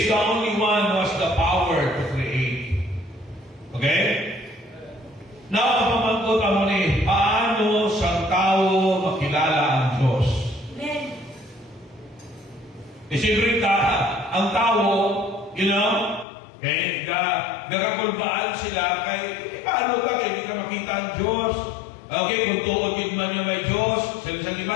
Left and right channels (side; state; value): right; drops out; at 16.2 s